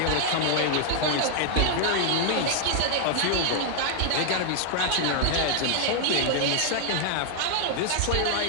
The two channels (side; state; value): both; different; correlation 0.00